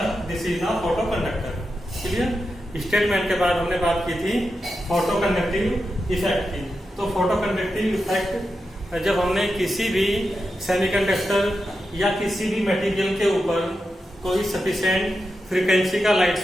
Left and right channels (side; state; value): both; normal; correlation 0.89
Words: this is the photo conductor. Clear? Statement के बाद हमने बात की थी फोटो कंडक्टिव इफेक्ट की। तो फोटो कंडक्टिव इफेक्ट जब हमने किसी भी सेमीकंडक्टर या किसी भी मटेरियल के ऊपर कोई सफिशिएंट फ्रीक्वेंसी का लाइट